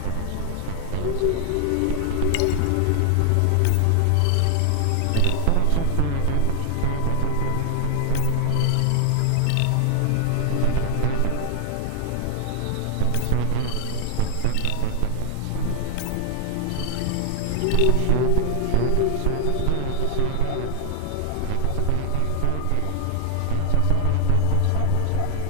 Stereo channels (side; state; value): both; different; correlation 0.00